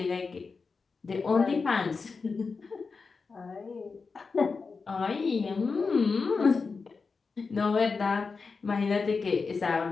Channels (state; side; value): quieter; right; 4.7 dB